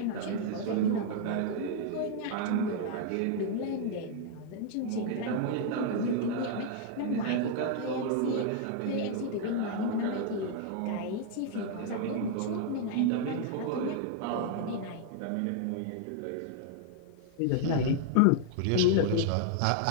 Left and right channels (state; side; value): different; both; correlation 0.00